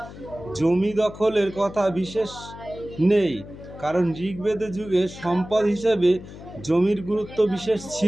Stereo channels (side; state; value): left; noise; hum, 15 dB below the sound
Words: জমি দখলের কথা বিশেষ নেই, কারণ ঋগ্বেদের যুগে সম্পদ হিসেবে জমির গুরুত্ব বিশেষ